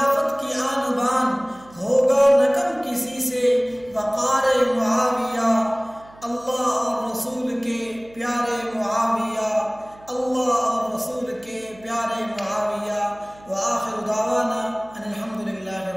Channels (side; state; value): right; noise; hum, 24 dB below the sound